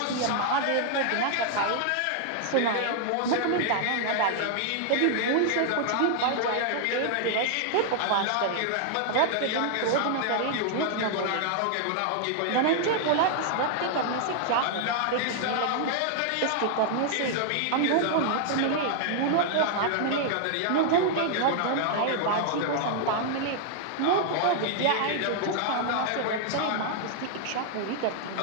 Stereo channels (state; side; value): different; both; correlation -0.01